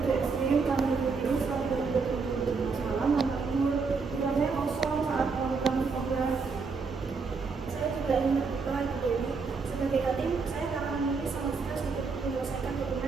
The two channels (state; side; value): quieter; left; 4.7 dB